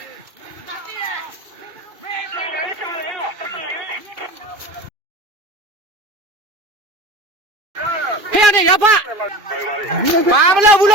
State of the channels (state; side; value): late; left; 2.4 ms